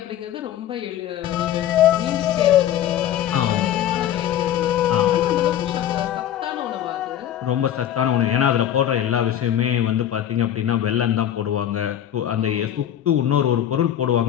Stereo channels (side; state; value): right; quieter; 11.0 dB